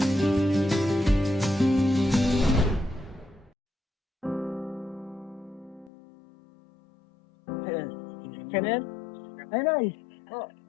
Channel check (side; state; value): right; drops out; at 5.9 s